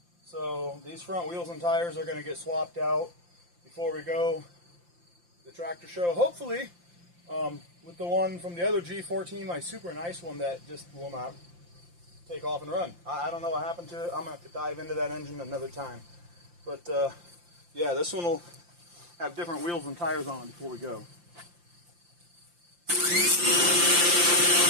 So these front wheels and tires are going to get swapped out before we go to the tractor show. Hopefully, with the one from the other G14, my super nice one that just will not take off and run. I don't know what happened to it. I'm going to have to dive into that engine another time. But yeah, this one will have different wheels and tires on it before we go.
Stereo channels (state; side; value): late; left; 5.8 ms